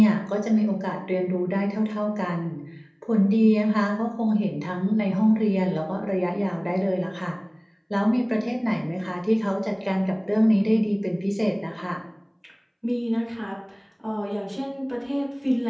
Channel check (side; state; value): both; identical; correlation 1.00